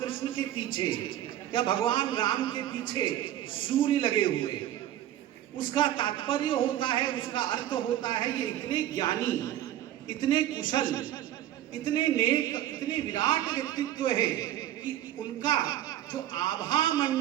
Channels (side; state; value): left; quieter; 12.7 dB